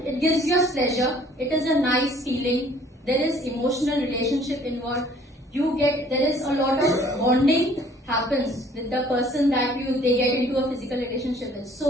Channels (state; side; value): normal; both; correlation 0.56